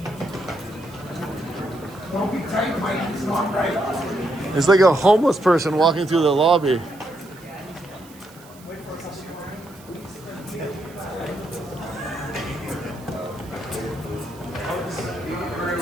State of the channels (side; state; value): right; noise; hiss, 23 dB below the sound